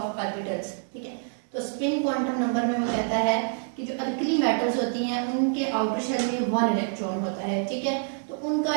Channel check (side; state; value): left; silent; 60 dB below the other